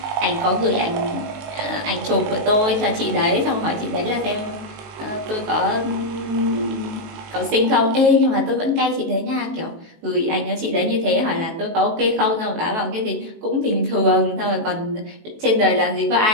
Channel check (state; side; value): late; left; 19 ms